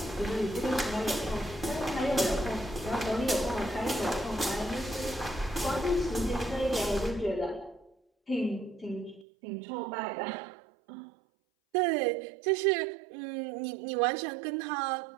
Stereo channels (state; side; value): drops out; left; at 9.2 s